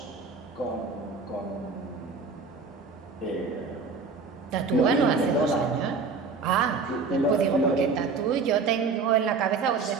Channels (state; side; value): quieter; left; 4.6 dB